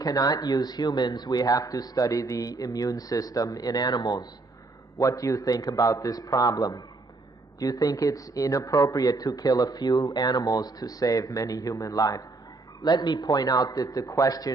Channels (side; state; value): left; quieter; 3.5 dB